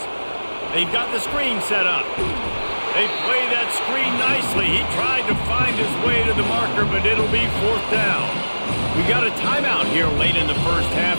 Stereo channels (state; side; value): inverted; both; correlation -1.00